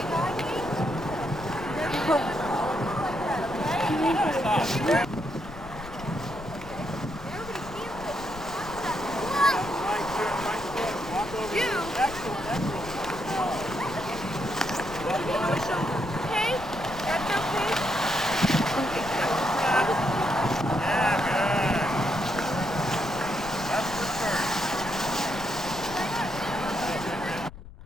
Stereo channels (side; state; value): left; noise; rumble, 15 dB below the sound